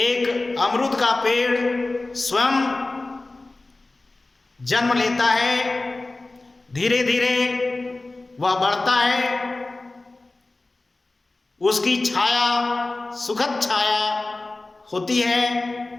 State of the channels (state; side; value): quieter; right; 3.1 dB